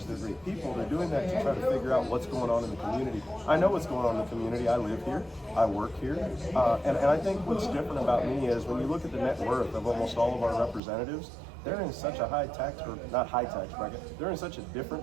they're great people. They're doing that to try to figure out what's going on in the community. I know what's going on in the community. I live here. I work here. And I think what's different about me is when you look at the net worth of almost all of our representatives, they're in such a high tax, or not high tax bracket, they're in such a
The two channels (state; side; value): drops out; left; at 10.8 s